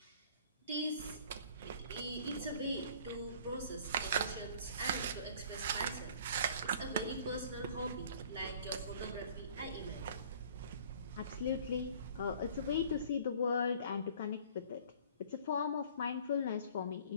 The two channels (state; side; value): inverted; both; correlation -0.51